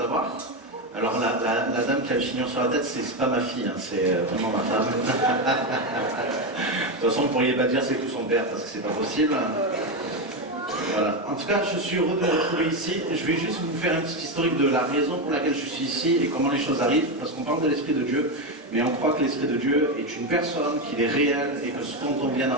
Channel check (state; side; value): normal; both; correlation 0.11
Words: Alors la dame qui a le chignon sur la tête, c'est pas ma fille, hein, c'est vraiment ma femme. De toute façon, vous ne pourriez pas dire c'est tout son père parce que c'est pas possible. Voilà. En tout cas, je suis heureux de me retrouver ici. Je vais juste vous faire un petit historique de la raison pour laquelle je suis ici et comment les choses arrivent. Parce qu'on parle de l'Esprit de Dieu, mais on croit que l'Esprit de Dieu est une personne, qu'il est réel et que ce dont on vient